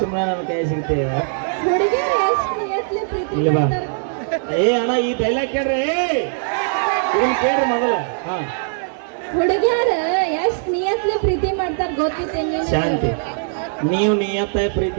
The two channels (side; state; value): left; silent; digital silence